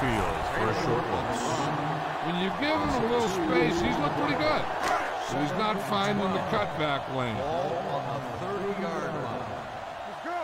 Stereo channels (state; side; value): identical; both; correlation 1.00